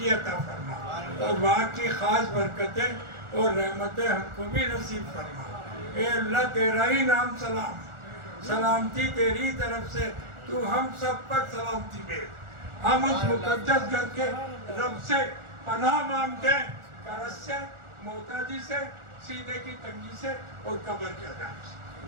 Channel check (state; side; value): late; left; 1.4 ms